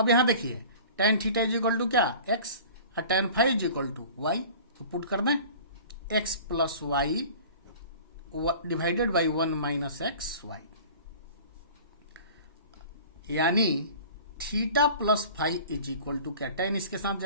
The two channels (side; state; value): both; inverted; correlation -0.43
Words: यहां देखिए tan theta is equal to क्या, x, और tan phi is equal to y। तो पुट कर दें x plus y divided by 1 minus x y, यानी theta plus phi is equal to क्या, tan इसके साथ